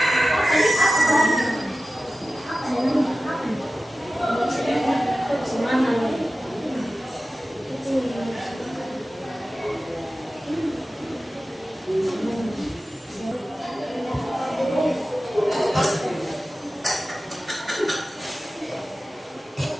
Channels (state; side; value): normal; both; correlation 0.95